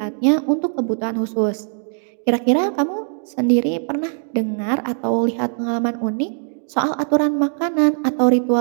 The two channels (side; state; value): left; silent; digital silence